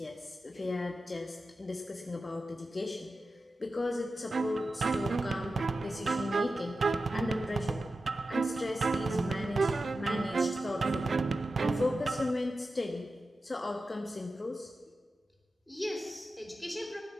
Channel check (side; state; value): both; normal; correlation 0.92